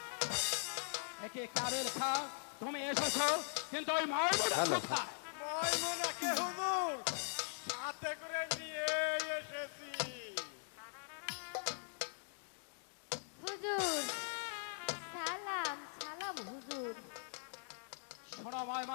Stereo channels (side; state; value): right; silent; digital silence